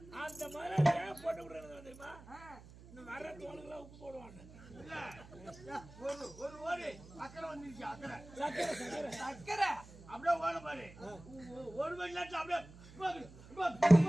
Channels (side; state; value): right; noise; hum, 19 dB below the sound